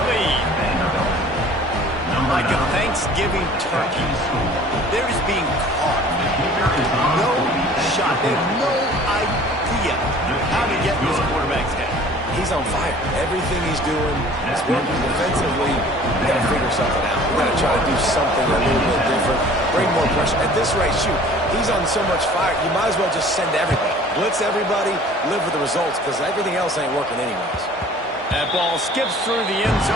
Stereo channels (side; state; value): both; normal; correlation 0.49